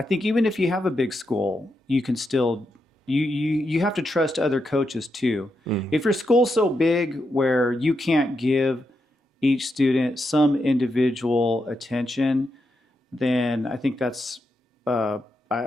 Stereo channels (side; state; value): both; normal; correlation 0.84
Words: think even if you have a big school, you can still you have to trust other coaches too. Mm-hmm. If your school's so big where you can't give each student some individual attention, then I think that's I